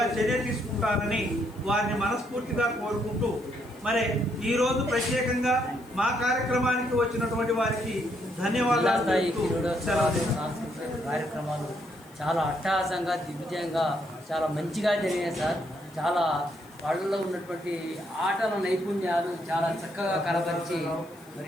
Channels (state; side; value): noise; left; hiss, 26 dB below the sound